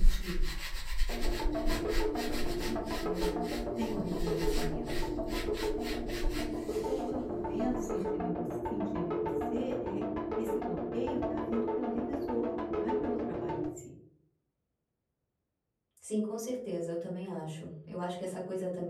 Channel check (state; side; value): identical; both; correlation 1.00